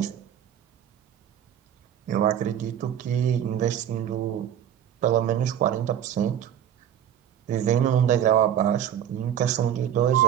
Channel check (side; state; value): left; quieter; 10.0 dB